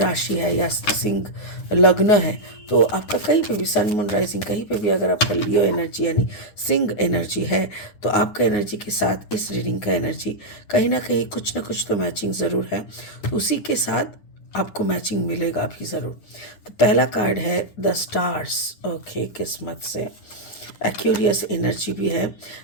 है या सिंह लग्न है तो आपका कहीं पे भी सन मून राइजिंग कहीं पे भी अगर आपका लियो एनर्जी यानी सिंह एनर्जी है तो आपका एनर्जी के साथ इस रीडिंग का एनर्जी कहीं ना कहीं कुछ ना कुछ तो मैचिंग ज़रूर है. तो उसी के साथ आपको मैचिंग मिलेगा भी ज़रूर. तो पहला कार्ड है द स्टार्स. ओके, किस्मत से एक्यूरियस एनर्जी भी है.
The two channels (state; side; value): late; right; 9.6 ms